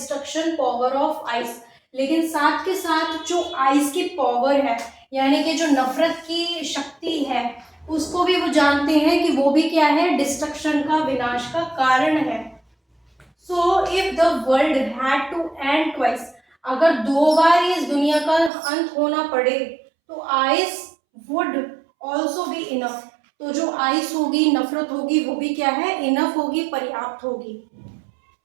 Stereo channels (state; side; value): drops out; left; at 18.5 s